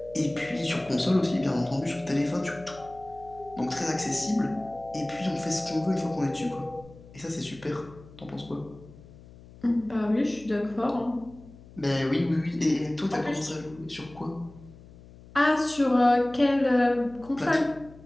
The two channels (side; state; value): left; noise; hum, 21 dB below the sound